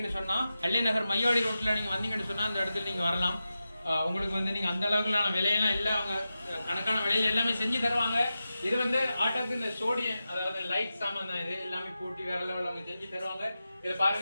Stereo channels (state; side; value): inverted; both; correlation -0.92